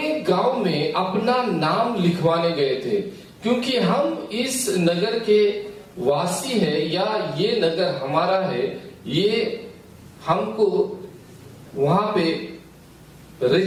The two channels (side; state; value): both; identical; correlation 1.00